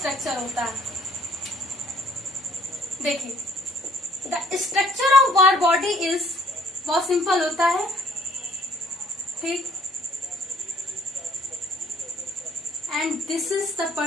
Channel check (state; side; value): normal; both; correlation 0.61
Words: होता है। देखिए the structure of Barr body is, बहुत सिंपल होता है। ठीक, and this is the